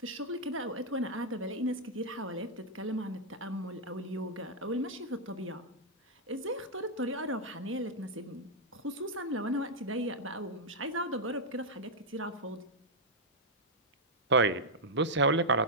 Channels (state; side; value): normal; both; correlation -0.06